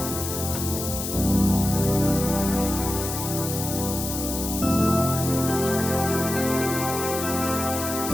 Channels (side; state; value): left; noise; hiss, 5 dB below the sound